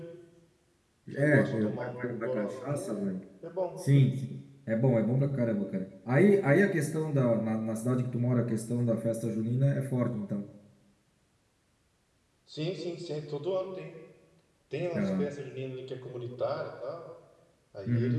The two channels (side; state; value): both; identical; correlation 1.00